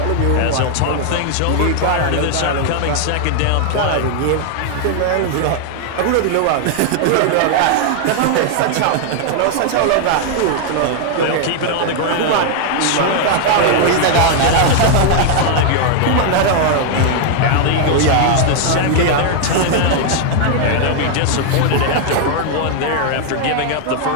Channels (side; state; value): both; different; correlation 0.00